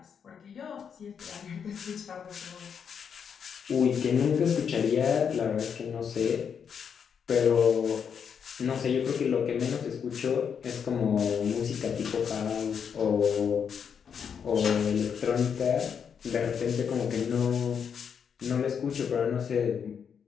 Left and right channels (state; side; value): quieter; right; 7.1 dB